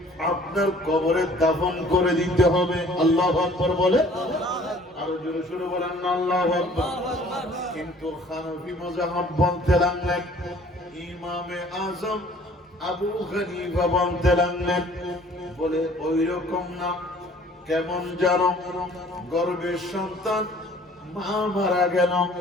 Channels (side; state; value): both; normal; correlation 0.54